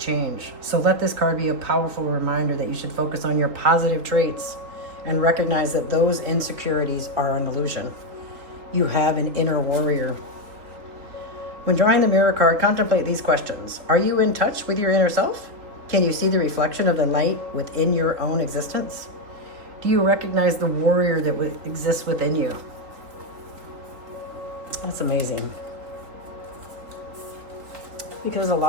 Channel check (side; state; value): left; late; 3.8 ms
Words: So let this card be a powerful reminder that you should focus on your positive traits and recognize that those insecurities are an illusion. You have an inner warrior. When drawing the mirror card, contemplate these questions. Are you in touch with your inner self? Can you see the reflection of the light within your own existence? Do you recognize the warrior that exists within you? That's amazing. Because a